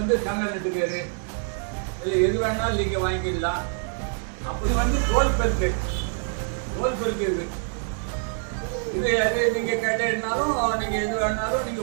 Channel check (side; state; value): left; silent; 56 dB below the other